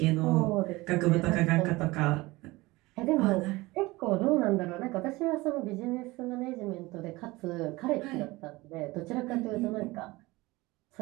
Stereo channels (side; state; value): left; quieter; 21.2 dB